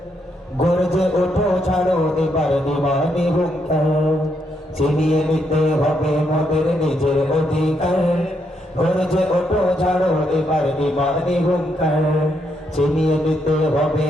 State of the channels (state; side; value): normal; both; correlation 0.77